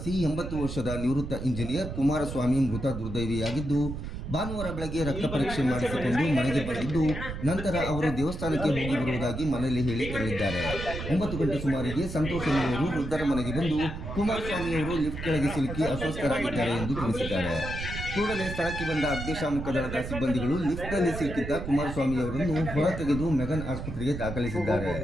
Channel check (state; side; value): noise; right; rumble, 7 dB below the sound